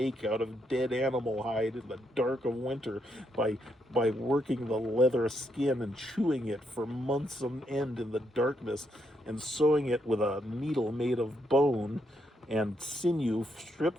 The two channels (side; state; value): both; normal; correlation 0.78